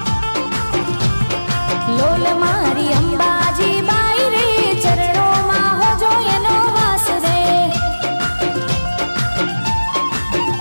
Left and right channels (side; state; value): both; inverted; correlation -1.00